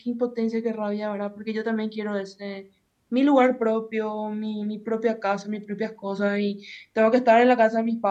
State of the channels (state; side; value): identical; both; correlation 1.00